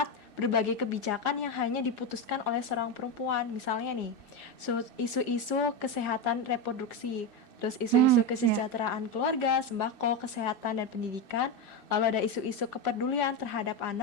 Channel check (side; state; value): right; late; 2.6 ms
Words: berbagai kebijakan yang hanya diputuskan oleh seorang perempuan. Misalnya nih, isu-isu kesehatan reproduksi, terus isu-isu kesejahteraan keluarga, sembako, kesehatan dan pendidikan, lalu ada isu-isu kepedulian terhadap